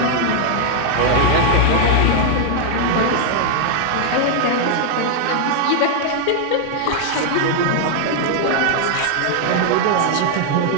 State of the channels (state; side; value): different; both; correlation 0.00